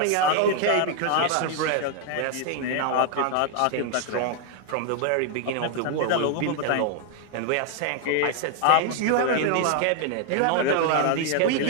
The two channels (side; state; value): both; different; correlation 0.00